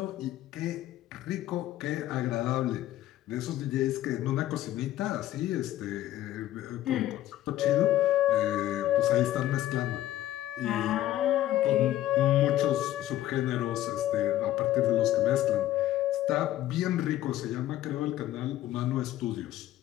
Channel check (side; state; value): right; quieter; 13.7 dB